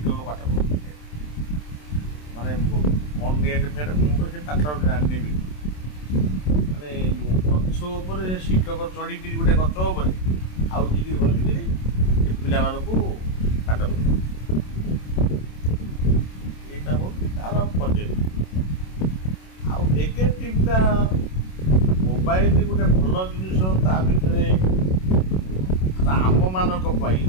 ପାଠ ପଢ଼ୁଥିଲେ, ମାନେ କ'ଣ ନେଟ୍ ଫେଟ୍ ମୁଁ ତ ସେ ପାଠ ଜାଣିନେବି, ମାନେ ଗଛ ଉପରେ ଶିକ୍ଷକ ଚଢ଼ିକିରି ଗୋଟେ ଗଛ ଉପରେ ଆଉ ଯିକିରି ବସିକିରି ସେ ପିଲାମାନଙ୍କୁ ପାଠ ପଢ଼ୁ। ଏଇଟା ହେଉଛି ତା'ର ପଜିଟିଭ୍। ଆଉ ନେଗେଟିଭ୍ଟା ମୋବାଇଲ ଗୋଟେ ଭଲ ଜିନିଷ, ତା ଭିତରେ ଆମମାନଙ୍କ ପାଇଁ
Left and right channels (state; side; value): late; right; 27 ms